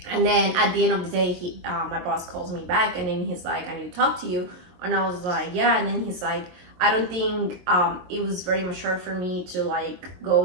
And then at the end of the day, my boss calls me back, and then he's like, I need to talk to you. And I was like, yeah. And then he's like, I don't think it was very mature for me to like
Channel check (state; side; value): late; left; 22 ms